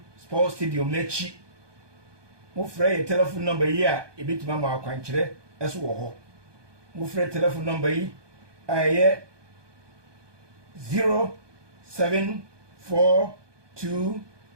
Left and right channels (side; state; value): left; late; 1.2 ms